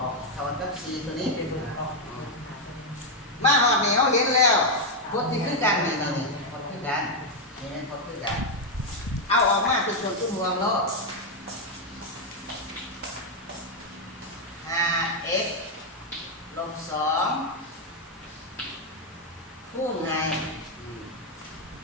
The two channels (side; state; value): both; normal; correlation 0.02